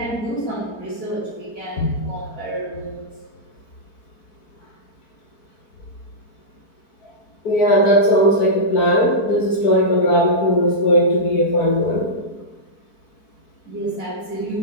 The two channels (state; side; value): late; right; 4.5 ms